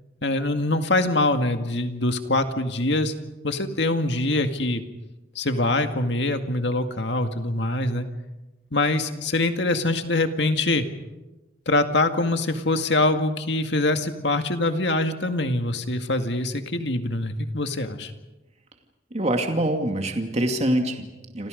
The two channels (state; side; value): normal; both; correlation 0.29